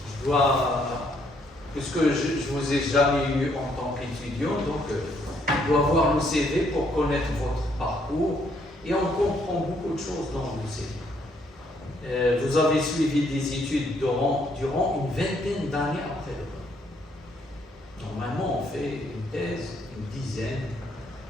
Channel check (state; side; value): normal; both; correlation 0.70